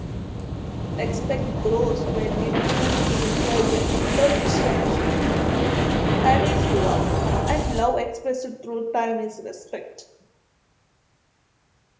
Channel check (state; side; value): identical; both; correlation 1.00